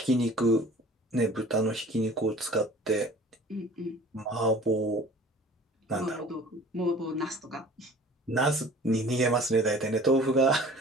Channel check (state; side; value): normal; both; correlation 0.46